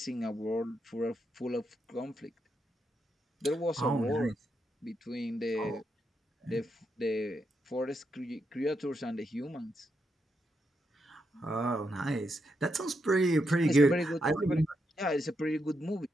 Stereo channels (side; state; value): both; normal; correlation 0.82